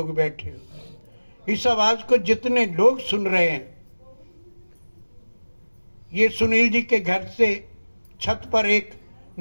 बैठे हो, इस आवाज को जितने लोग सुन रहे हैं, ये सुनील जी के घर से छत पर एक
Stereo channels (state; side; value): inverted; both; correlation -1.00